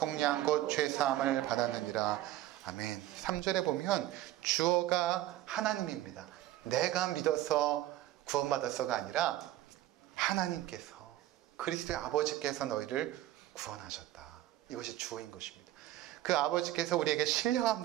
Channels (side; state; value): left; quieter; 14.6 dB